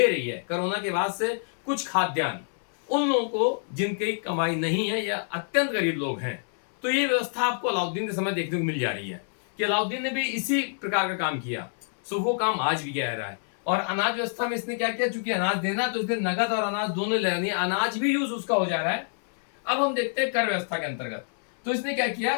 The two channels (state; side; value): silent; right; 58 dB below the other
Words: रही है कोरोना के बाद से कुछ खाद्यान्न, उन लोगों को जिनकी कमाई नहीं है या अत्यंत गरीब लोग हैं। तो ये व्यवस्था आपको अलाउद्दीन के समय देखने को मिल जा रही है कि अलाउद्दीन ने भी इसी प्रकार का काम किया। सो वो काम आज भी गया रहा है। और अनाज व्यवस्था में इसने क्या किया, चूंकि अनाज देना तो इसने नगद और अनाज दोनों ले रही है, अनाज भी यूज उसका हो जा रहा है। अब हम देखते हैं कर व्यवस्था के अंतर्गत। तो इसने क्या किया,